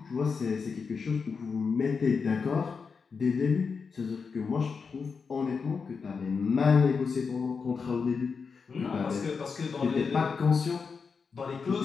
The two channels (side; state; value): right; quieter; 5.3 dB